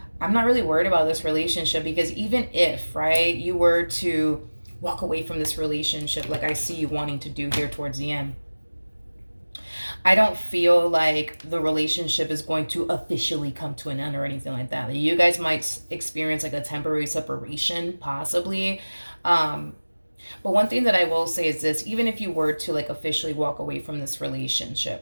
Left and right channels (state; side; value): inverted; both; correlation -1.00